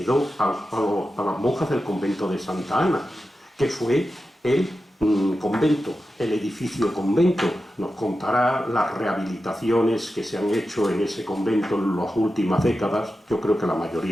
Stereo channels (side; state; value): both; normal; correlation 0.92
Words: a las monjas del convento de Santa Ana, que fue el convento, el edificio convento. Nos contará las rehabilitaciones que se han hecho en ese convento en las últimas décadas, yo creo que la